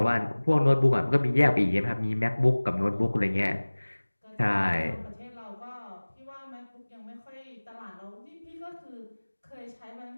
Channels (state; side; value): inverted; both; correlation -1.00